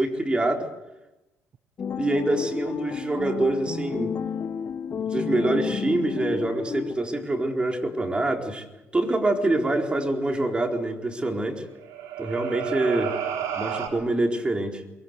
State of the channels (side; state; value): both; normal; correlation 0.84